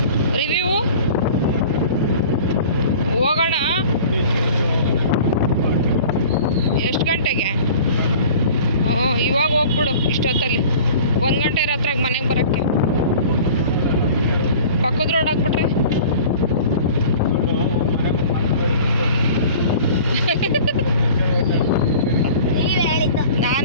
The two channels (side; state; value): both; inverted; correlation -0.43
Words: ರಿವ್ಯೂ ಹೋಗೋಣ. ಎಷ್ಟು ಗಂಟೆಗೆ? ಇವಾಗ ಹೋಗ್ಬಿಡು ಇಷ್ಟೊತ್ತಲ್ಲಿ 1 ಗಂಟೆ ರಾತ್ರಿಗೆ ಮನೆಗೆ ಬರೋಕ್ಕೆ. ಪಕ್ಕದ ರೋಡ್ ಹಾಕ್ಬಿಟ್ರೆ